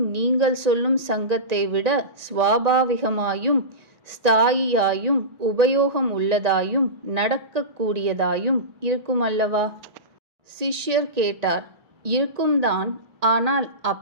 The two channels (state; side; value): late; left; 1.8 ms